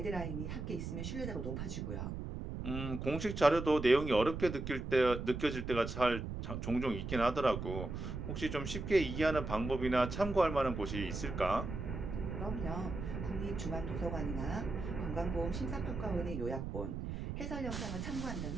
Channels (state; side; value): noise; right; rumble, 5 dB below the sound